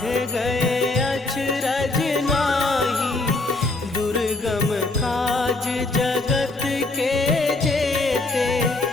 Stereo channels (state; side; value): quieter; right; 3.1 dB